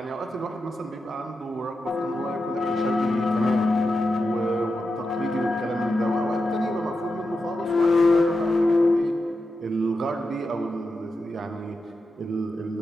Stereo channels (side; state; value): both; normal; correlation 0.89